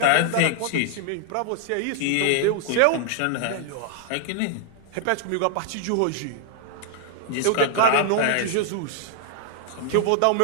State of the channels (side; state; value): both; different; correlation -0.01